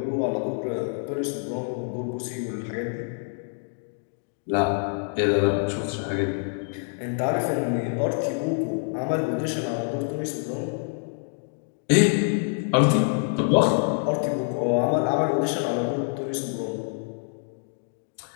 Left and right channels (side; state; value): right; silent; 57 dB below the other